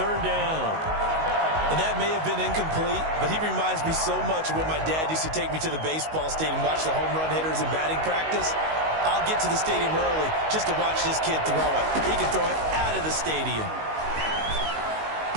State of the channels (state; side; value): late; left; 19 ms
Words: down. And that may have been incomplete, but he reminds me so much of when my dad used to take me to the baseball stadium, watch the home run hitters in batting practice. I'll get to the stadium early just to watch this kid throw it. He can throw it out of the stadium.